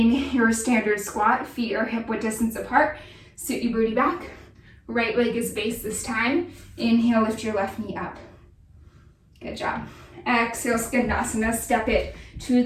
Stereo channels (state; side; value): identical; both; correlation 1.00